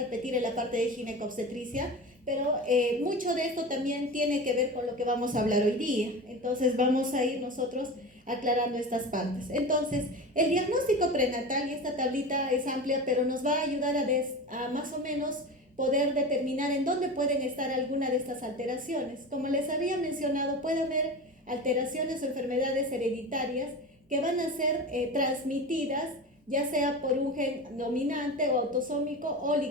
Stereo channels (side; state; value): both; normal; correlation 0.29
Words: en la parte de ginecobstetricia, pero mucho de esto también tiene que ver con lo que vamos a hablar hoy día. Entonces vamos a ir nosotros aclarando estas partes. Entonces, el diagnóstico prenatal, y esta tablita es amplia, pero nos va a ayudar a más o menos poder determinar en dónde pueden estar alguna de estas alteraciones. Como les había mencionado, puede haber alteraciones o enfermedades hereditarias que van a ser transmitidas ya sea por un gen dominante o autosómico o